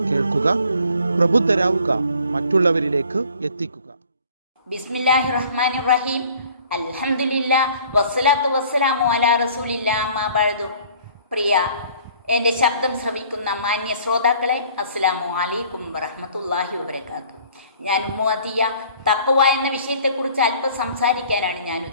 കേൾക്കുക, പ്രബുദ്ധരാവുക, മറ്റുള്ളവരിലേക്ക് എത്തിക്കുക. ബിസ്മില്ലാഹിർ റഹ്മാനിർ റഹീം. അൽഹംദുലില്ലാഹ് വസ്സലാത്തു വസ്സലാമു അലാ റസൂലില്ലാഹ് അമ്മാ ബഅദു. പ്രിയ എൻ്റെ ശബ്ദം ശ്രവിക്കുന്ന മാന്യ ശ്രോതാക്കളെ, അസ്സലാമു അലൈക്കും വറഹ്മത്തുള്ളാഹി വബറകാതുഹു. ഞാൻ ഉമ്മു അതിയ തഖ്വ എന്ന വിഷയത്തെക്കുറിച്ച് അല്പം സംസാരിക്കാനാണ് ഞാൻ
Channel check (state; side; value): inverted; both; correlation -0.53